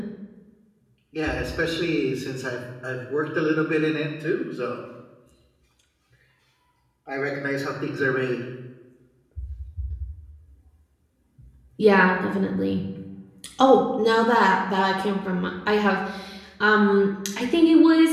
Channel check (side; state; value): both; identical; correlation 1.00